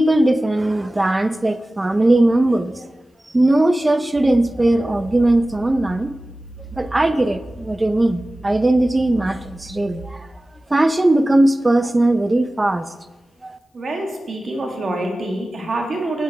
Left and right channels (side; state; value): both; normal; correlation 0.97